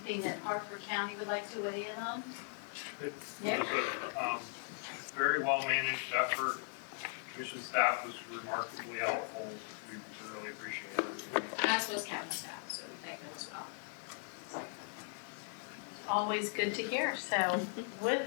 that Hartford County would like to weigh in on? It was a very well-managed effort. Commission staff was remarkably helpful. We really appreciate it. As was county staff, so we thank them as well. Always good to hear. So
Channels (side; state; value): right; silent; 52 dB below the other